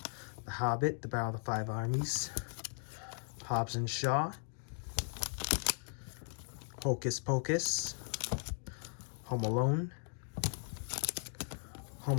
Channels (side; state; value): right; silent; 53 dB below the other